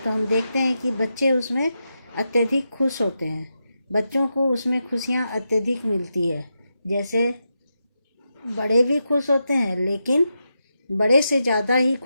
हम देखते हैं कि बच्चे उसमें अत्यधिक खुश होते हैं। बच्चों को उसमें खुशियाँ अत्यधिक मिलती है। जैसे बड़े भी खुश होते हैं, लेकिन बड़े से ज़्यादा ही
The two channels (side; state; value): both; inverted; correlation -0.87